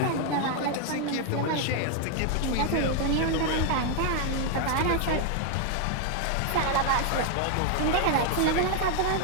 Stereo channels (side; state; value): both; different; correlation 0.00